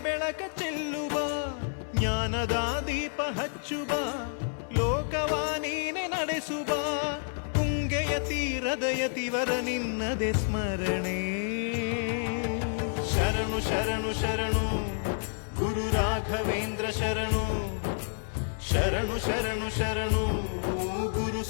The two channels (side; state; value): right; silent; 58 dB below the other